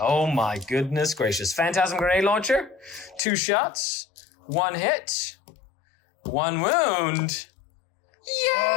my goodness gracious. Phantasm grenade launcher. 2 shots. 1 hit. 1 wound. Yay!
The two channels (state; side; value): drops out; right; at 3.2 s